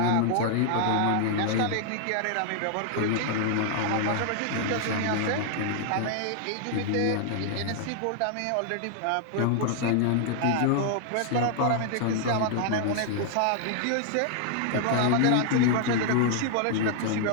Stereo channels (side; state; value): both; different; correlation 0.00